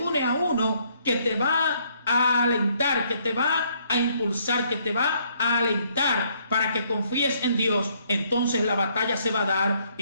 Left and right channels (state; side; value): inverted; both; correlation -0.68